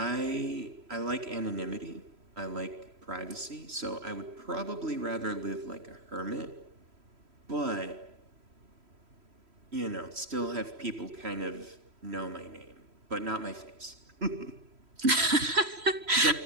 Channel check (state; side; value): late; left; 3.1 ms